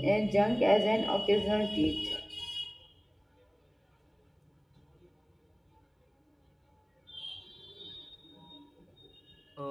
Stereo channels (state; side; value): identical; both; correlation 1.00